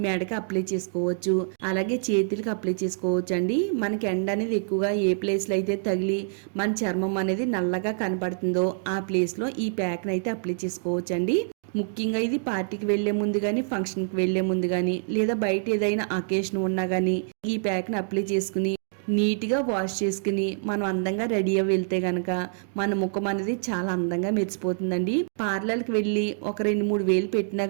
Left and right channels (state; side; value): silent; left; digital silence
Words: మెడకి అప్లై చేసుకోవచ్చు, అలాగే చేతులకి అప్లై చేసుకోవచ్చు అండి. మనకి ఎండ అనేది ఎక్కువగా ఏ ప్లేస్లో అయితే తగిలి మన చర్మం అనేది నల్లగా కనపడుతుందో ఆ ప్లేస్లో ఈ ప్యాక్ని అయితే అప్లై చేసుకోవచ్చు అండి. ముఖ్యంగా ఇది పార్టీకి వెళ్లే ముందు కానీ ఫంక్షన్కి వెళ్లే ముందు కానీ లేదా బయట ఏదైనా అకేషన్ ఉన్నా కానీ ఈ ప్యాక్ని అప్లై చేసుకుని నీట్గా వాష్ చేసుకుని మనం అందంగా రెడీ అయ్యి వెళ్తే గనక మన ముఖం అనేది చాలా అందంగా మెరిసిపోతుందండి. పార్లర్కి వెళ్ళి ఒక 2-3 వేలు పెట్టినా